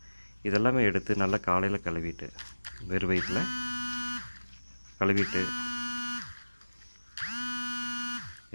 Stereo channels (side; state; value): both; inverted; correlation -1.00